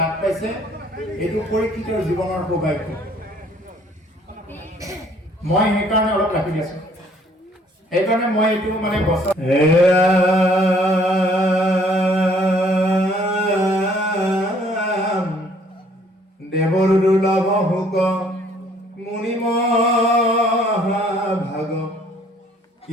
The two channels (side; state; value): both; normal; correlation 0.60